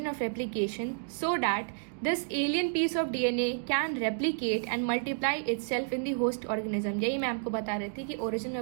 of replication so that this alien piece of DNA can replicate and multiply itself in the host organism। यही मैं आपको बता रही थी कि origin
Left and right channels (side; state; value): left; silent; digital silence